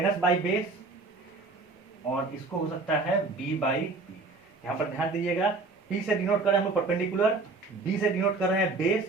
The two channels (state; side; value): quieter; left; 3.7 dB